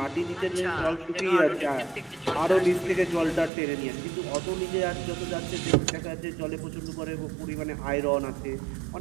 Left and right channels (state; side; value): drops out; left; at 3.5 s